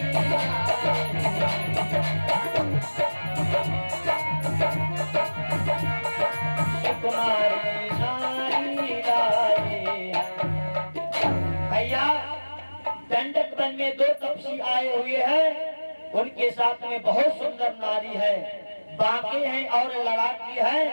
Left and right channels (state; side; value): inverted; both; correlation -1.00